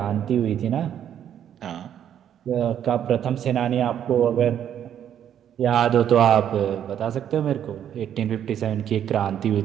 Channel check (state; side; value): quieter; left; 9.7 dB